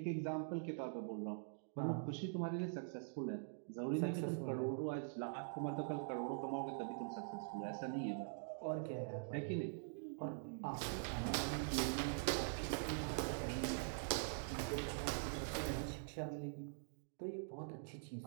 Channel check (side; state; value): left; silent; digital silence